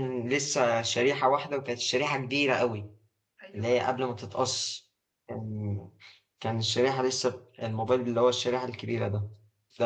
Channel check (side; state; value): both; identical; correlation 1.00